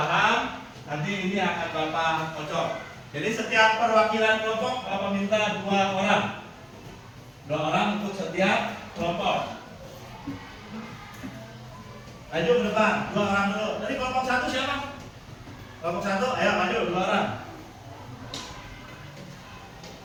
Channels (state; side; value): identical; both; correlation 1.00